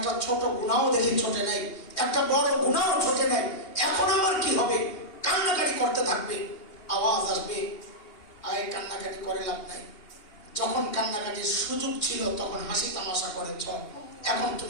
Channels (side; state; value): right; late; 2.8 ms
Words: ছোট গুনাহও দেখি ছোটে নাই, একটা বড় গুনাহও ছোটে নাই, এখন আমার কি হবে? কান্নাকাটি করতে থাকবে, আওয়াজ আসবে, আয় কান্নাকাটি করে লাভ নাই। যখন কান্নাকাটির সুযোগ ছিল তখন হাসি তামাশা করেছ, এখন